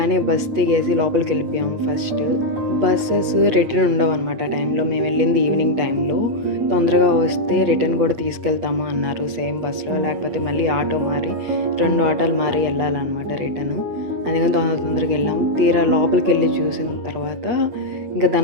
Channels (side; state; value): left; late; 8.4 ms